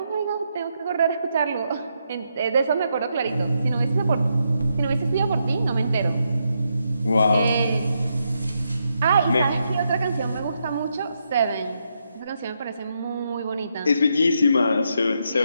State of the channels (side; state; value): both; inverted; correlation -0.81